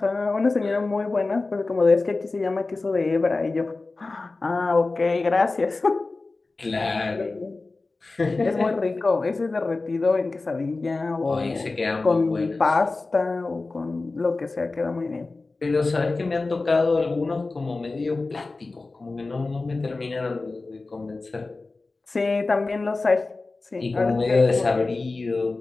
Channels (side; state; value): right; quieter; 3.5 dB